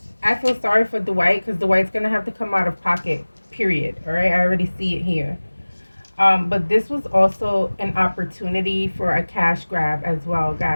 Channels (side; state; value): both; inverted; correlation -1.00